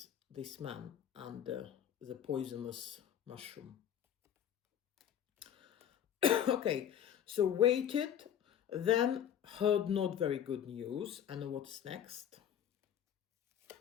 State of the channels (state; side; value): quieter; right; 9.5 dB